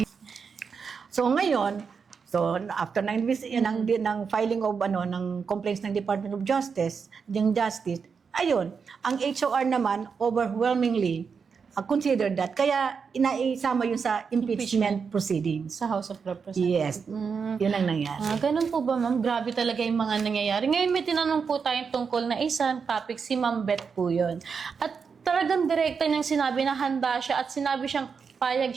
So ngayon, after ng filing of ng complaints ng Department of Justice, ayun, ang HOR naman overwhelmingly considered that. Kaya inaisama yun sa impeachment proceedings. Sa House of Representatives. Yes. Yun ang nangyari. Ganun po ba, ma'am? Grabe talaga yung mga nangyayari. Ngayon may tinanong po tayong tungkol na isang topic, si Ma'am Beth po yun. At talagang direkta niyang sinabi na handa siya at sinabi siyang payag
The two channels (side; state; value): left; quieter; 5.8 dB